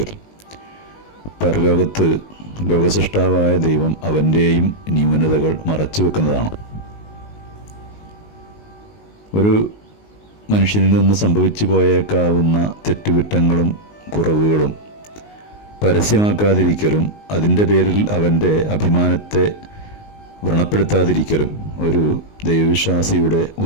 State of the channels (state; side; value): late; right; 19 ms